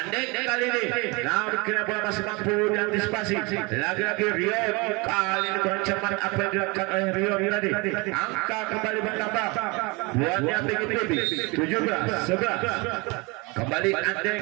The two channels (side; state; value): left; quieter; 27.2 dB